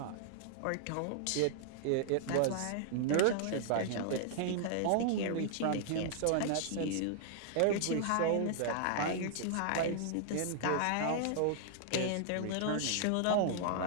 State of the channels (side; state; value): both; different; correlation -0.01